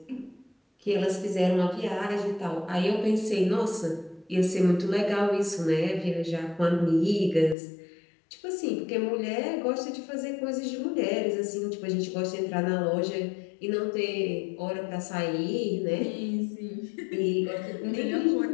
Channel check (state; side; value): drops out; right; at 7.6 s